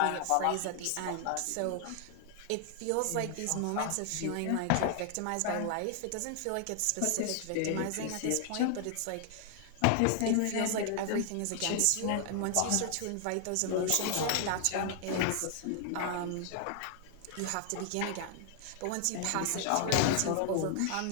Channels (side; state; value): both; different; correlation 0.00